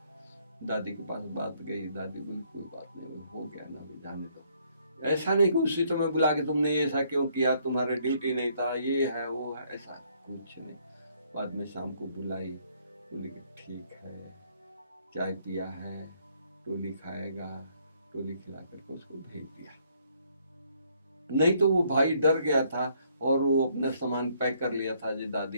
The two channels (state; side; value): inverted; both; correlation -0.67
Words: दादी के पास बात गई, दादी बोली कोई बात नहीं, हो गया ना, अभी जाने दो। ऐसा नहीं कि उसी समय बुला के तुमने ऐसा क्यों किया, तुम्हारा ड्यूटी नहीं था, ये है वो है, ऐसा कुछ नहीं। बाद में शाम को बुलाई, बोली कि ठीक है, चाय पिया है, टोली खाएगा, टोली खिला करके उसको भेज दिया। नहीं तो वो भाई डर गया था और वो अपना सामान पैक कर लिया था, जो